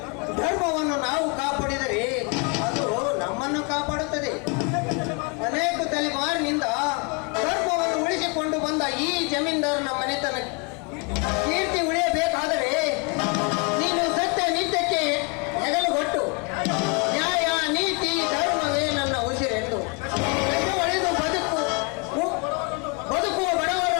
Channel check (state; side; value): quieter; right; 32.2 dB